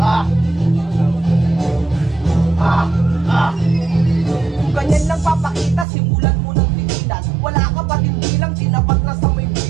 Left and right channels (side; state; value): left; drops out; at 5.9 s